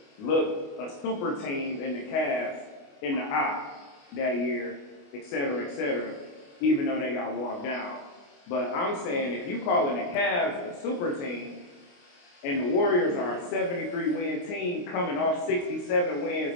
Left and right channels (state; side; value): late; right; 28 ms